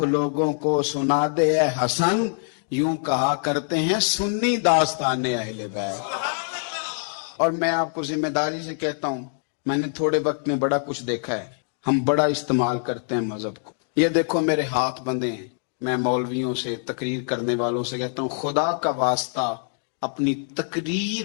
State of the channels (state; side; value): silent; right; digital silence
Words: لوگوں کو سنا دے اے حسن، یوں کہا کرتے ہیں سنی داستان اہل بیت۔ اور میں آپ کو ذمہ داری سے کہتا ہوں، میں نے تھوڑے وقت میں بڑا کچھ دیکھا ہے، ہم بڑا استعمال کرتے ہیں مذہب کو۔ یہ دیکھو میرے ہاتھ بندھے ہیں، میں مولویوں سے، تقریر کرنے والوں سے کہتا ہوں خدا کا واسطہ اپنی